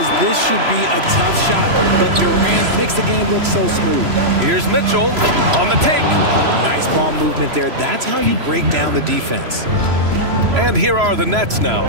this should be a tough shot, but Durant makes the game look so smooth. Here's Mitchell on the take. Nice ball movement there. That's how you break down the defense. And here are the Nets now.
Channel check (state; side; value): late; left; 3.0 ms